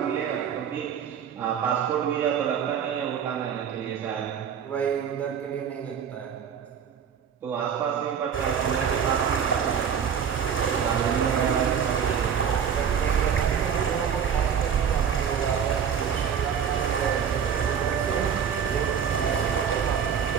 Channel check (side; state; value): left; quieter; 7.7 dB